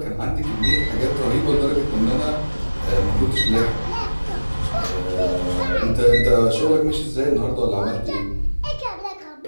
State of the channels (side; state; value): both; inverted; correlation -1.00